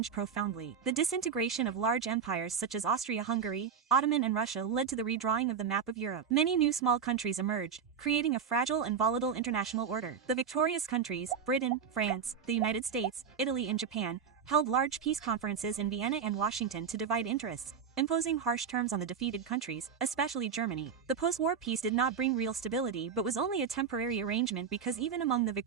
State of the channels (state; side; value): quieter; left; 6.8 dB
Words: profoundly. The disintegration of large empires such as Austria-Hungary, Ottoman and Russia led to the redrawing of the map of Europe. Many new small countries emerged, creating a fragile and volatile international order. The victorious countries, Britain, France, the United States, Italy and Japan, held large peace conferences in Vienna and Washington to divide interests, imposing harsh terms on the defeated countries, especially Germany. The post-war peace did not bring real stability but was only a temporary arrangement because even among the